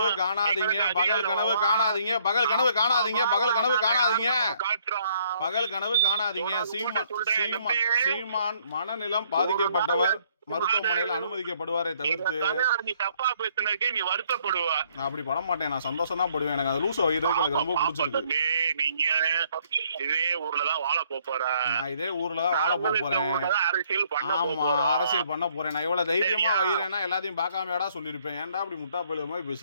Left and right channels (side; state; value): both; inverted; correlation -0.66